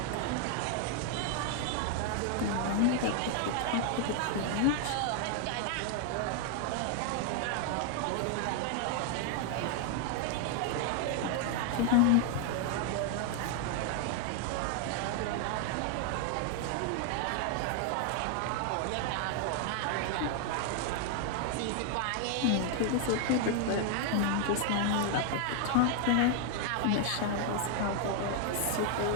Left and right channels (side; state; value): both; different; correlation 0.00